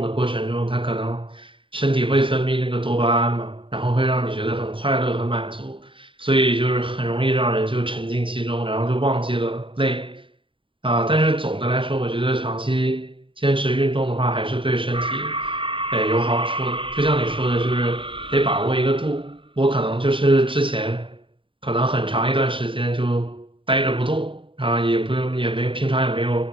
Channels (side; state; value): left; late; 0.25 ms